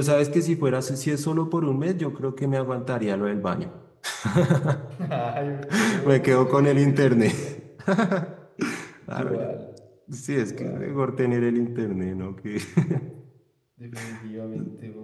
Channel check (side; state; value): both; identical; correlation 1.00